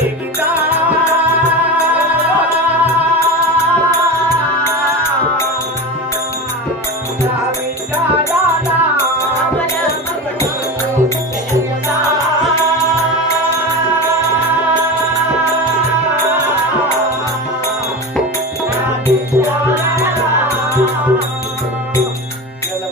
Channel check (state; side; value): normal; both; correlation 0.26